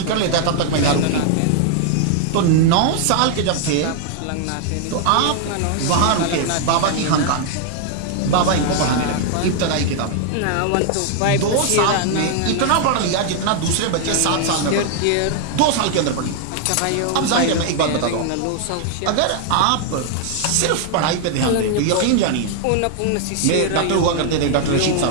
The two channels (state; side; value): different; both; correlation 0.00